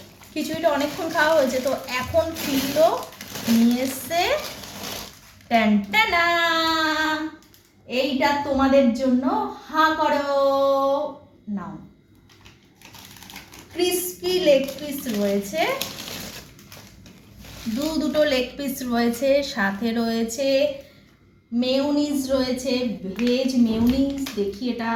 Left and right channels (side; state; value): both; identical; correlation 1.00